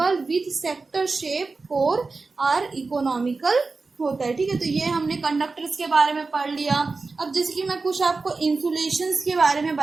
with sector shape core are economical होता है, ठीक है। तो ये हमने कंडक्टर्स के बारे में पढ़ लिया। अब जैसे कि मैं कुछ आपको इंसुलेशंस के बारे में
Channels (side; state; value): left; quieter; 4.0 dB